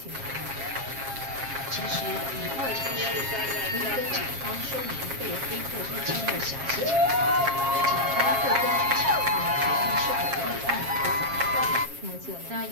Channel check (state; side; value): late; left; 7.4 ms